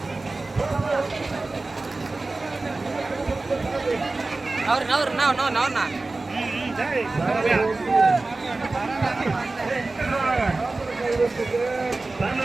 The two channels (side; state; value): left; quieter; 3.3 dB